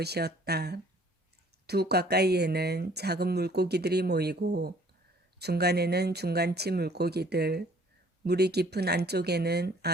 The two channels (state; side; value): normal; both; correlation 0.57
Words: 두 가까이에는 작은 물고기들이 모이고 중간에는 중간치 물고기들, 물이 깊은 안쪽에는